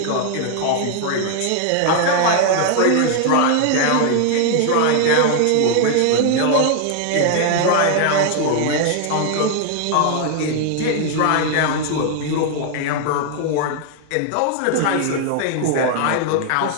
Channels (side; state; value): both; different; correlation 0.00